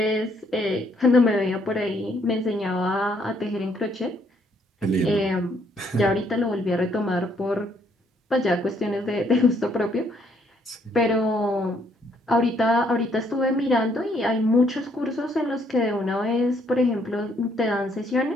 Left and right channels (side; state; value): both; normal; correlation 0.69